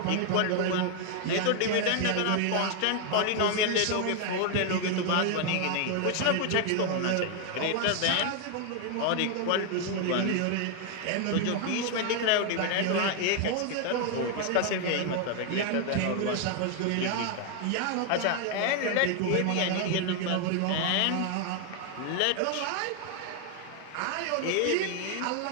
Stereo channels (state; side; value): different; both; correlation 0.00